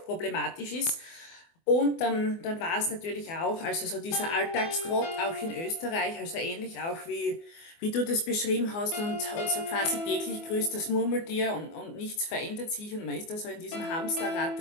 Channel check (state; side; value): late; right; 24 ms